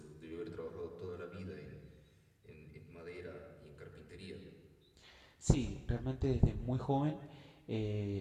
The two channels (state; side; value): identical; both; correlation 1.00